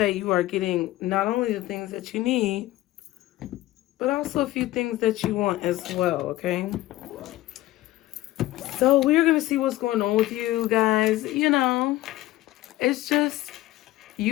you are getting not only the things that you need, but also a few things that you want as well, okay? So we're going to see what's going on with you guys. You know, it's just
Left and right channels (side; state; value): right; quieter; 16.4 dB